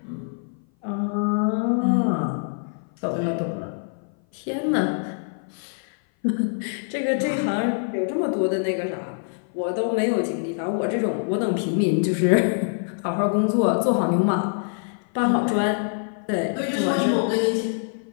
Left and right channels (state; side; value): silent; right; 57 dB below the other